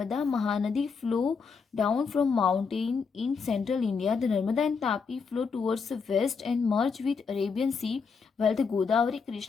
Mahanadi flow down from mountain in central India. The Narmada and Tapi flow towards the west and merge with Arabian Sea, while the Godavari,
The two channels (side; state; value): right; quieter; 5.4 dB